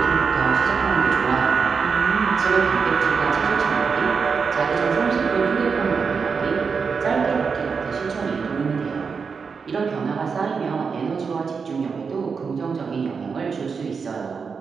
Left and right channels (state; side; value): quieter; left; 5.5 dB